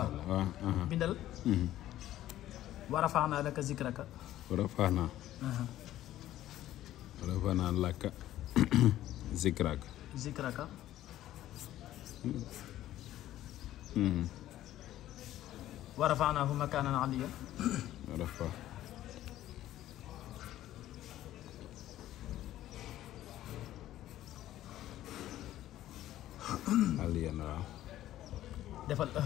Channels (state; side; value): quieter; right; 13.6 dB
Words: bindal wa rafa'na laka zikraka wa rafa'na laka zikraka wa rafa'nahu makanan aliyyan aliyan waaw defal